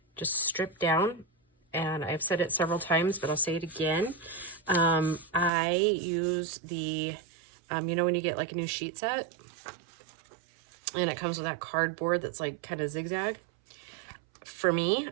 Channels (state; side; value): drops out; left; at 5.5 s